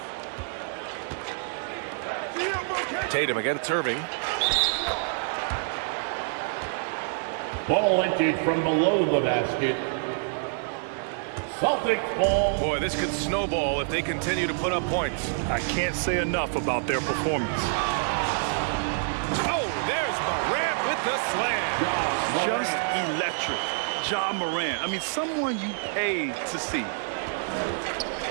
Tatum against Irving. Ball emptied from below the basket. Celtics ball. Boy, this could snowball if they continue to put up points. I can't say enough about their performance. Oh, there's Morant with the slam. Just electric. Ja Morant. I mean, someone you paid to see.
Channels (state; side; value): silent; left; digital silence